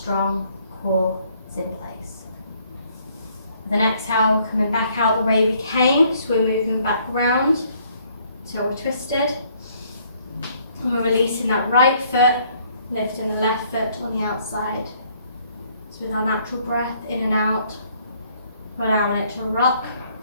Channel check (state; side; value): inverted; both; correlation -0.65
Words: core is in place. With an exhale, coming back out the way we came, so we're moving back round till we're twisted. And we're releasing that right foot, lifting the left foot on the outside. So with our natural breath in and out, we're allowing it to rock